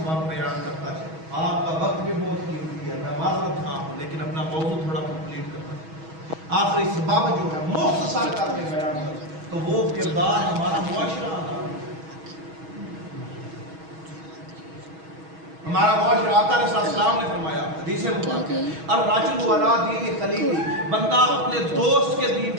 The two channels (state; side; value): late; left; 6.2 ms